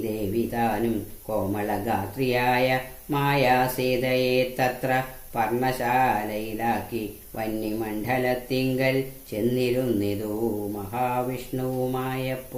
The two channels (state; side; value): identical; both; correlation 1.00